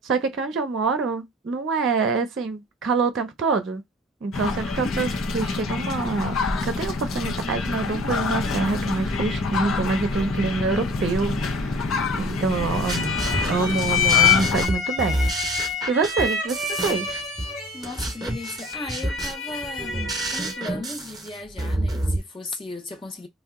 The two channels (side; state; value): both; normal; correlation 0.43